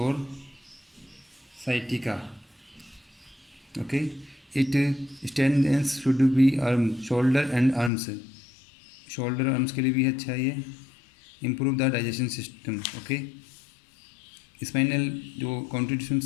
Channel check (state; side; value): drops out; right; at 7.9 s